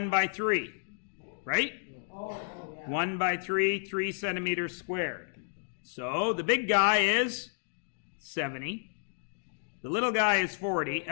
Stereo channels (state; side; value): silent; right; digital silence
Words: by 3, right? Oh, yeah. 1 by 3, 3 centimeters squared. So the big guy is 70. The little guy is 40.